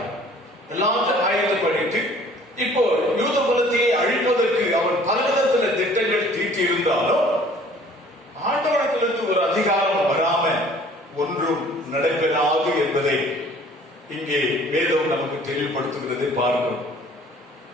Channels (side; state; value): both; normal; correlation 0.53